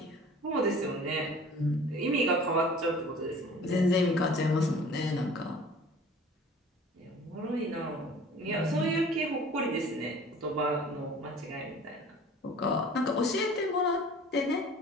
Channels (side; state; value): both; normal; correlation 0.46